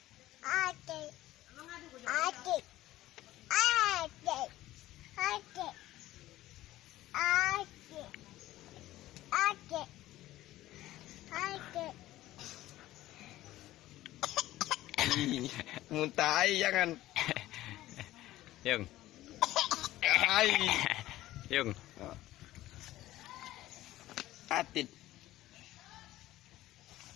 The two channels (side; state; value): right; quieter; 15.5 dB